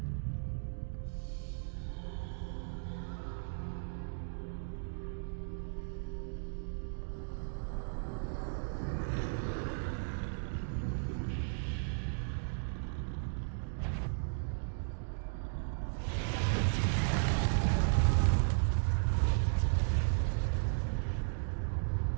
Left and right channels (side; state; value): left; silent; digital silence